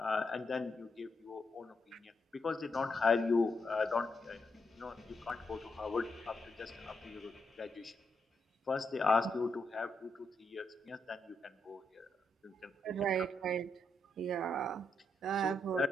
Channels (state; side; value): normal; both; correlation 0.81